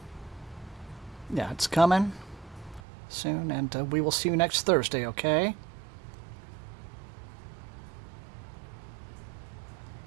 Yeah, it's coming soon, and we will see you next Thursday, okay?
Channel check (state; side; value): drops out; left; at 2.8 s